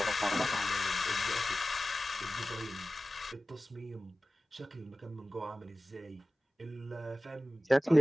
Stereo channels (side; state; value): both; normal; correlation 0.96